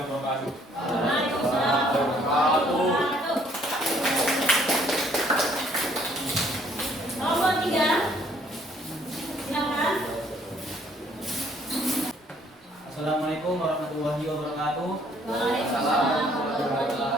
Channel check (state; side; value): normal; both; correlation 0.63